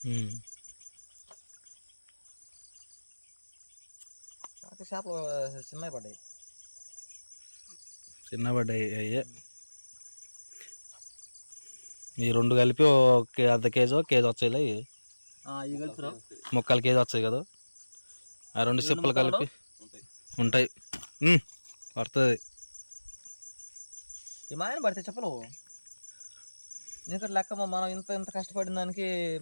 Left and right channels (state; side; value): inverted; both; correlation -1.00